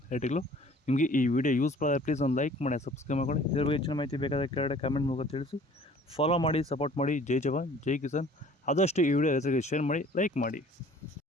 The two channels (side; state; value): both; normal; correlation 0.51